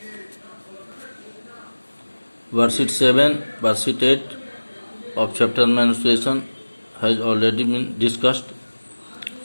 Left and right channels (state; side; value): inverted; both; correlation -1.00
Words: Worksheet 7, worksheet 8 of chapter menstruation has already been discussed.